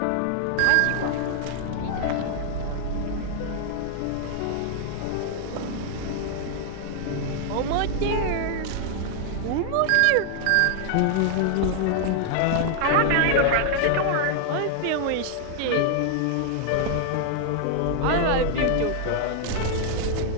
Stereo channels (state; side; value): different; both; correlation 0.00